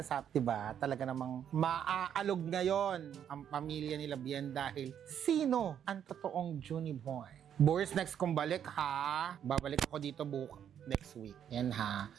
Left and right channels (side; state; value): left; quieter; 9.1 dB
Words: sa diba? Talaga namang maaalog ngayon ang pamilya nila Vien dahil sino ang totoong Junie Boy? Boris, next kong balik ha. Babalik ako dito next week. Yan ha.